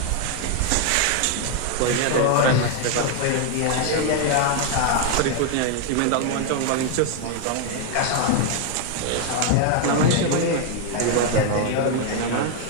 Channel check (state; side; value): different; both; correlation 0.00